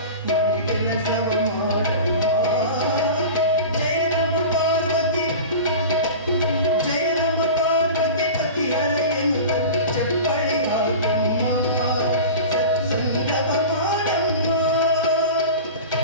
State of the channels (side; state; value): both; inverted; correlation -0.33